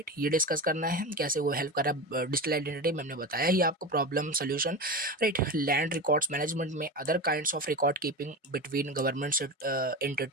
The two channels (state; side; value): normal; both; correlation 0.24